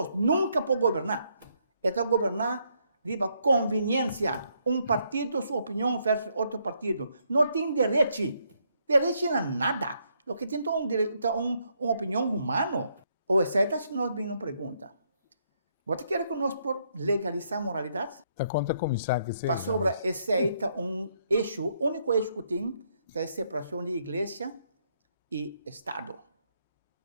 nunca pode governar. É governar riba conveniência, partido, sua opinião versus outro partido. Não tem direito. Direito não é nada. O que tem uma opinião humana. Ou exceto se nós bem não pergunta. Você quer que nós legalizar a moralidade? Tá conta começar que seja. Para sobre esse eixo, o único eixo que tem é a separação de igreja e Estado.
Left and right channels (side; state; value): both; inverted; correlation -0.74